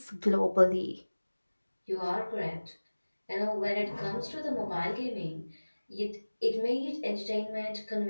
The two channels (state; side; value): inverted; both; correlation -1.00